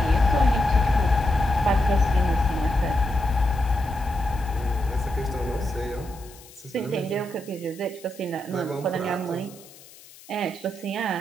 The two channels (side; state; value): left; noise; hiss, 22 dB below the sound